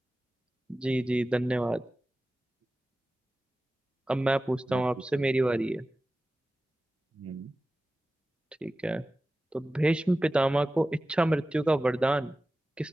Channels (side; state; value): both; normal; correlation 0.96